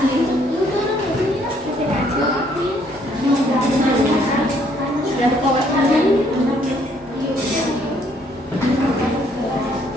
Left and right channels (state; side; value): normal; both; correlation 0.66